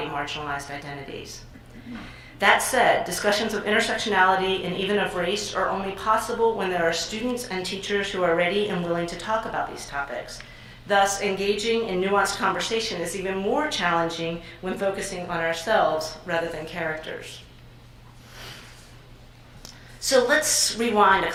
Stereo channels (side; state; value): both; identical; correlation 1.00